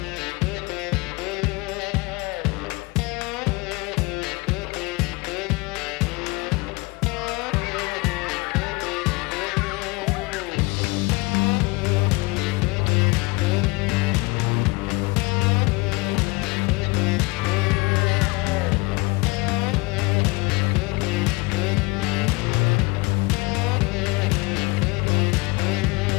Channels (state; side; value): quieter; right; 25.0 dB